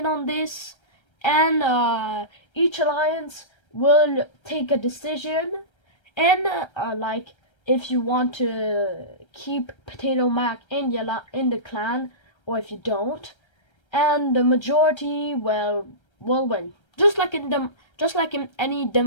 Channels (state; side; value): late; right; 1.3 ms